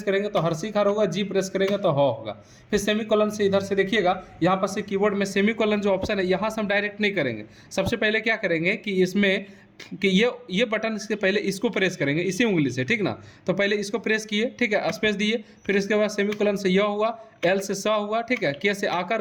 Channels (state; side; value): identical; both; correlation 1.00